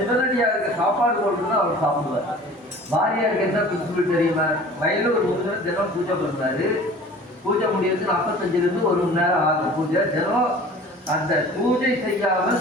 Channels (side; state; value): both; normal; correlation 0.44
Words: சிவனடியாருக்கு சாப்பாடு போட்டுதான் அவர் சாப்பிடுவார். பாரியாருக்கு என்ன பிரின்சிபிள் தெரியுமா? வயலில் ஒரு முருகன் தினம் பூஜை பண்ணுறாரு. பூஜை முடியறதுக்கு 45 1 மணி நேரம் ஆகும் பூஜை. தினம் அந்த பூஜை